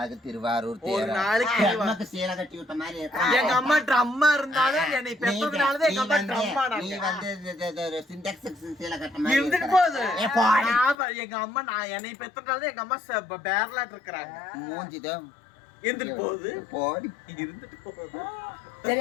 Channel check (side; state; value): right; drops out; at 11.0 s